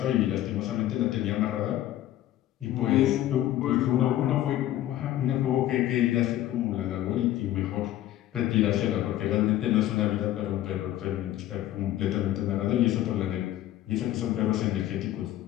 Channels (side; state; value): right; quieter; 13.5 dB